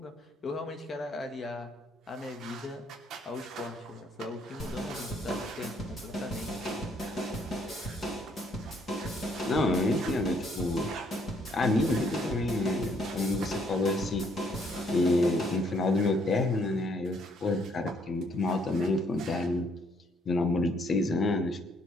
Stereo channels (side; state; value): both; normal; correlation 0.68